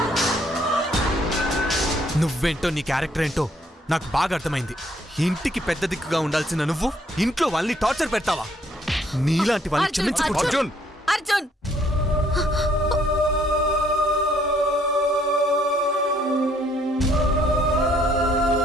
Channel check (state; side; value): normal; both; correlation 0.67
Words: నువ్వేంటో నీ క్యారెక్టర్ ఏంటో నాకు బాగా అర్థమైంది. ఇంటికి పెద్ద దిక్కుగా ఉండాల్సిన నువ్వు ఇంట్లో వాళ్ళని టార్చర్ పెడతావా? నీలాంటి వాళ్ళని అర్జున్, క్షమించకూడదు. అర్జున్. అర్జున్